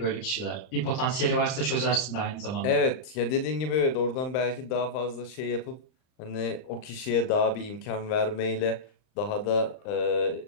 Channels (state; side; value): late; right; 39 ms